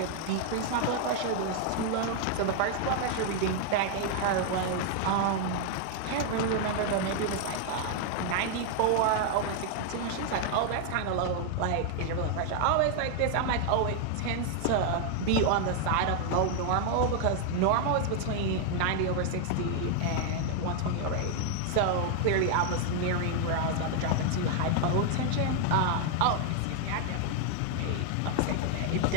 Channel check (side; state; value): both; different; correlation 0.00